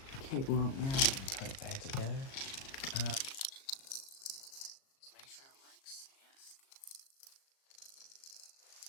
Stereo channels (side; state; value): right; late; 37 ms